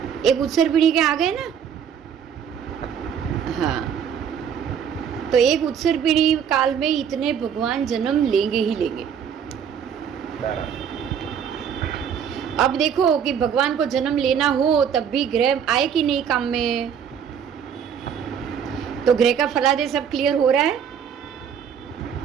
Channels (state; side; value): quieter; left; 7.9 dB